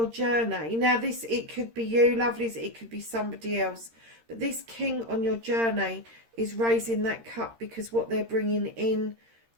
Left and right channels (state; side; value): late; left; 13 ms